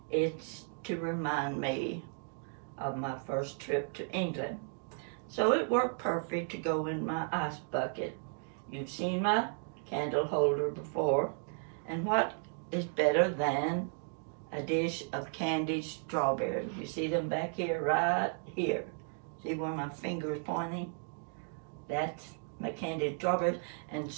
It's to remind me of my first trip to England. So it worked perfect to go in my ice bucket. You've seen my candle holder before. And what is better than a dish of candied strawberries? You see them back here, right here. See where my finger is pointing? That's my candied strawberries. And as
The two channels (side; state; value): left; silent; 55 dB below the other